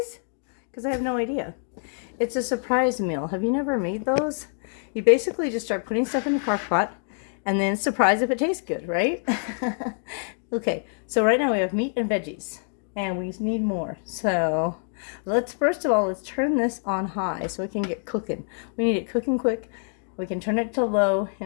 because I have no idea. It's a surprise meal. Have you never made those? You basically just start putting stuff in the crock pot, and then surprise if it tastes good, right? Okay, so right now we have meat and veggies, and we need more. So first of all, let's turn this on high so it can get cooking. We need it cooking quick. We can turn it to low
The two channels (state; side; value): silent; right; 58 dB below the other